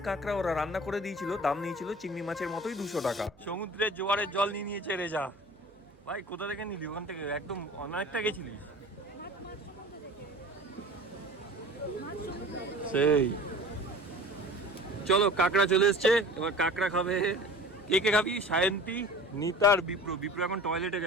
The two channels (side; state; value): right; noise; hum, 28 dB below the sound